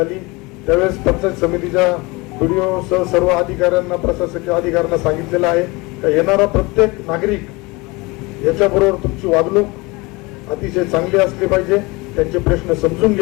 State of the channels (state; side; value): quieter; right; 24.5 dB